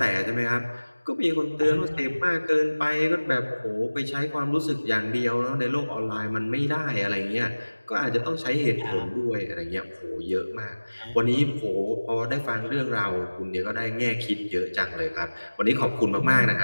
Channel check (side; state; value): both; inverted; correlation -1.00